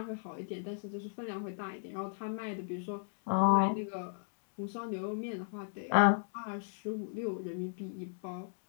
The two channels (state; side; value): silent; right; digital silence